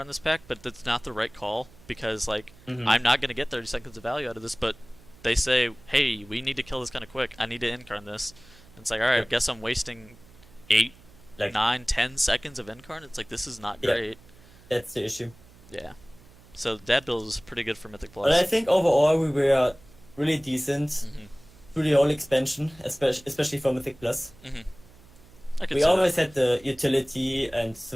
this pack, but that's not the right call because like Hmm. I'm not gonna get 30 seconds of value out of this. But they say, hey, we need to kill this kind of quick. I need to Incarn this. And it's like, all right, I Yep. guess I'm wasting 8, Like 9, 10 seconds of Incarn. It's like this is not Yeah. great. that's the issue. Yeah. So that build is pretty good for Mythic But I Plus. think overall we were really decent Hmm. through the whole expansion, especially for Mythic Plus. Hmm. I could We say that. always had the utility and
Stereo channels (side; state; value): right; noise; hum, 24 dB below the sound